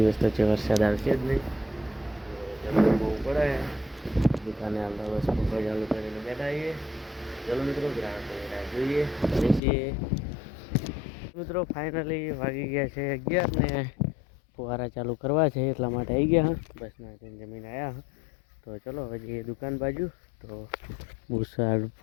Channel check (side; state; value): right; drops out; at 9.6 s